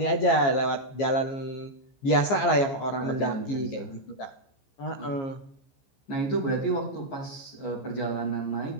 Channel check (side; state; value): right; late; 15 ms